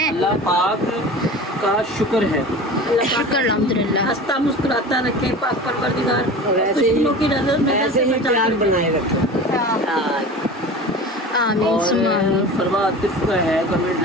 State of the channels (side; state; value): both; normal; correlation 0.35